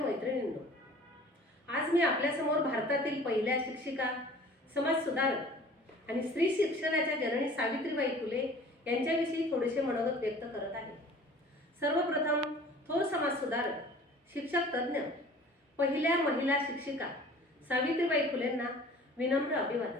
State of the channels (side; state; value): both; normal; correlation 0.47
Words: आज मी आपल्यासमोर भारतातील पहिल्या शिक्षिका, समाज सुधारक आणि स्त्री शिक्षणाच्या जननी सावित्रीबाई फुले यांच्याविषयी थोडेसे मनोगत व्यक्त करत आहे। सर्वप्रथम थोर समाज सुधारक, शिक्षक तज्ञ, पहिल्या महिला शिक्षिका सावित्रीबाई फुलेंना विनम्र